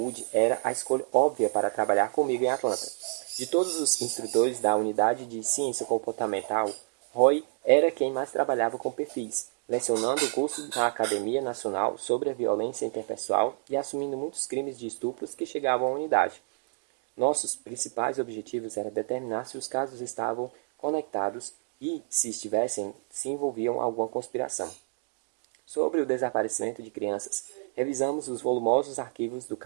era a escolha óbvia para trabalhar comigo em Atlanta. De todos os instrutores da unidade de ciência comportamental, Roy era quem mais trabalhava com perfis, lecionando o curso na Academia Nacional sobre a Violência Interpessoal e assumindo muitos crimes de estupros que chegavam à unidade. Nossos principais objetivos era determinar se os casos estavam conectados e, se estivessem, se envolviam alguma conspiração. Sobre o desaparecimento de crianças, revisamos os volumosos arquivos do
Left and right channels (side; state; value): left; silent; digital silence